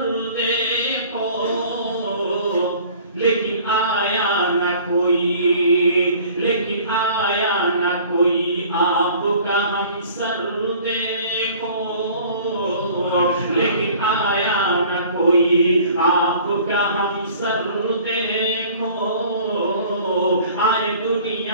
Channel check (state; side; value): inverted; both; correlation -0.50